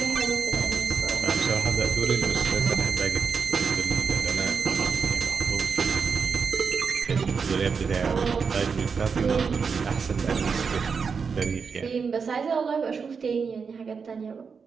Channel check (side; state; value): left; quieter; 5.7 dB